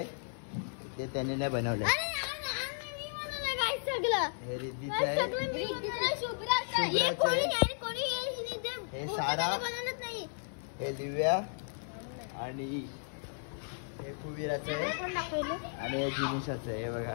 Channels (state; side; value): silent; right; 55 dB below the other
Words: ते त्याने नाही बनवलं. हे रिद्धीचं आहे. हे सारा. हे दिव्या आणि हे कुबीराचं आहे आणि हे जिनिशाचं आहे. हे बघा.